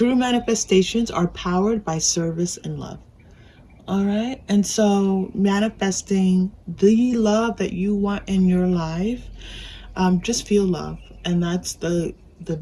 manifestations are powered by service and love. All right, and so manifesting the love that you want in your life, just feel love, and that's the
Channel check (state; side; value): identical; both; correlation 1.00